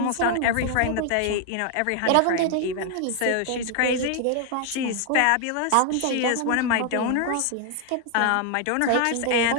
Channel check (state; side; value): different; both; correlation 0.00